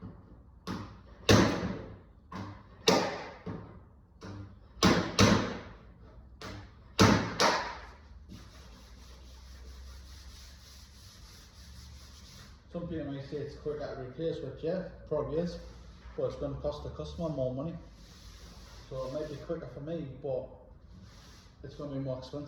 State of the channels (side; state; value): both; identical; correlation 1.00